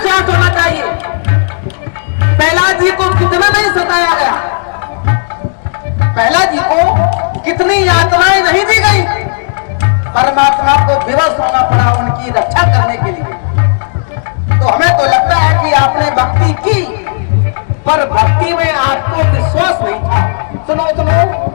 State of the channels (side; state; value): right; silent; digital silence